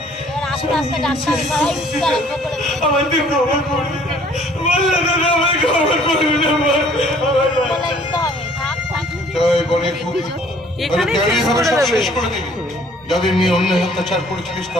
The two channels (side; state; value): both; normal; correlation 0.57